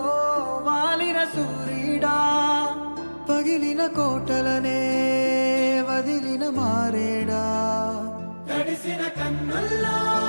వాలిన సూర్యుడా, పగిలిన కోటలనే వదిలిన మారేడా. తడిసిన కన్నుల్లో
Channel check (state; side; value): inverted; both; correlation -1.00